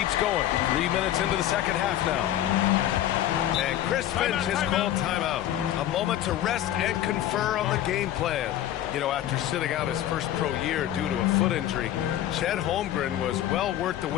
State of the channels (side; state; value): right; quieter; 12.4 dB